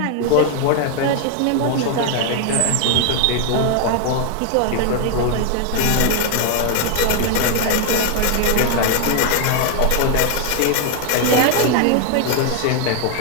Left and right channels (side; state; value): both; different; correlation 0.00